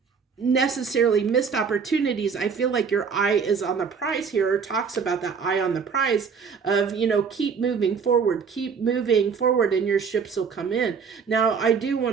necessarily missed opportunities. I feel like your eye is on the prize here, or talks about that eye on the prize of, keep moving forward, and your ships will come in. Now, I do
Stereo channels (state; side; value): quieter; left; 6.0 dB